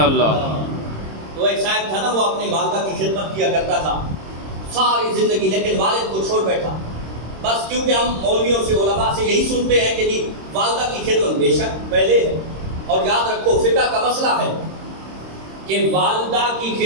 تو ایک صاحب تھا نا، وہ اپنی والدہ کی خدمت کیا کرتا تھا ساری زندگی، لیکن والد کو چھوڑ بیٹھا، بس کیونکہ ہم مولویوں سے علماء سے یہی سنتے ہیں کہ جی والدہ کی خدمت بے شک پہلے ہے، اور یاد رکھو فقہ کا مسئلہ ہے کہ والدہ کی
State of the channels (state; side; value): late; left; 26 ms